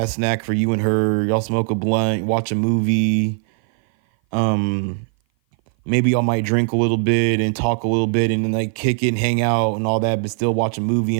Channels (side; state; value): left; silent; 57 dB below the other